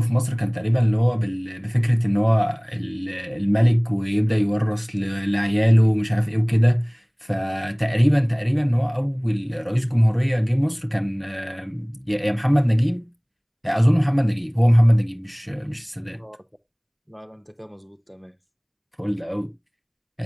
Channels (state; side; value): identical; both; correlation 1.00